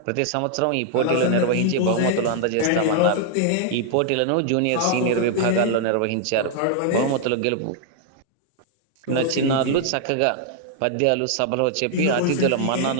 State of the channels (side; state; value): both; different; correlation -0.01